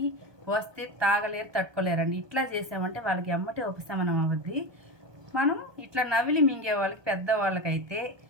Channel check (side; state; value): left; late; 1.2 ms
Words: వస్తే తాగలేరు, తట్టుకోలేరండి. ఇట్లా చేసామంటే వాళ్ళకి ఎమ్మటే ఉపశమనం అవుద్ది. మనం ఇట్లా నవిలి మింగే వాళ్ళకి, పెద్దవాళ్ళకైతే